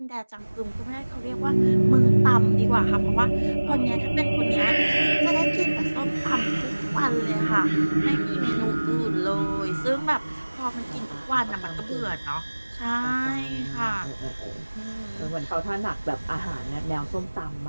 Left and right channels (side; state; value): both; inverted; correlation -1.00